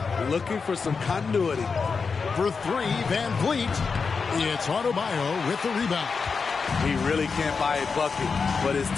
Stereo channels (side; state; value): right; quieter; 5.1 dB